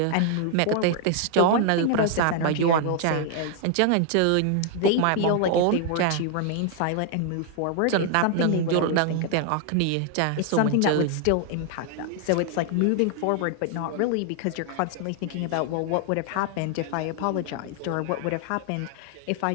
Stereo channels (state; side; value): different; both; correlation 0.00